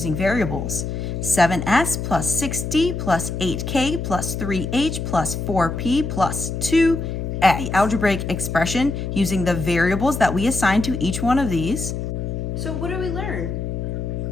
variables. 7S plus 6D plus 8K plus 3H plus 4P plus 2X. The algebraic expression using the variables that we assigned to each one of these. So what do we learn?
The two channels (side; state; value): left; noise; hum, 4 dB below the sound